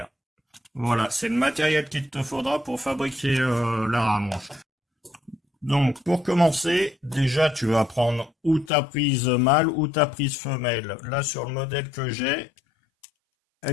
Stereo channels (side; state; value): right; drops out; at 8.7 s